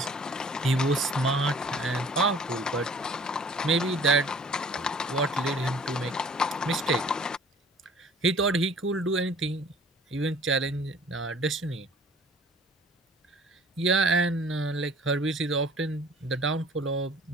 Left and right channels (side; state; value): both; normal; correlation 0.51